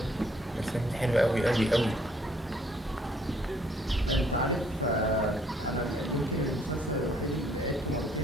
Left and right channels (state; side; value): normal; both; correlation 0.64